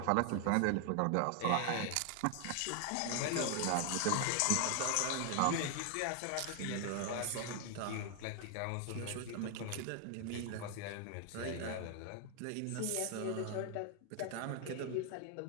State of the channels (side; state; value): both; different; correlation 0.00